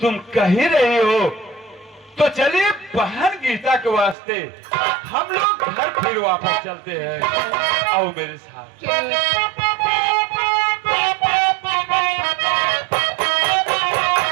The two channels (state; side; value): drops out; left; at 4.2 s